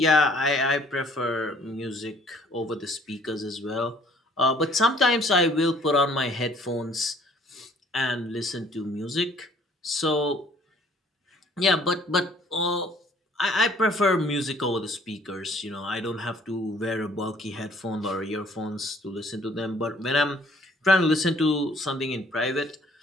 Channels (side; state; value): both; normal; correlation 0.58